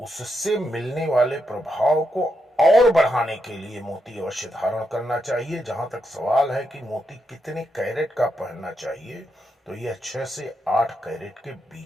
उससे मिलने वाले प्रभाव को और बढ़ाने के लिए मोती अवश्य धारण करना चाहिए। जहां तक सवाल है कि मोती कितने कैरेट का पहनना चाहिए, तो यह 6 से 8 कैरेट के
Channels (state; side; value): normal; both; correlation 0.82